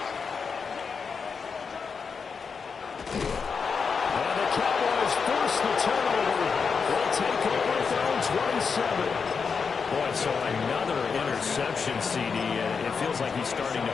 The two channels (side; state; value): right; quieter; 5.6 dB